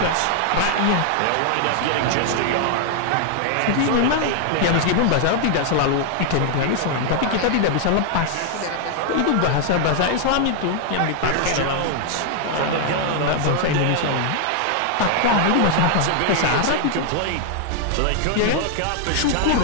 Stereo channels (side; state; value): both; different; correlation 0.00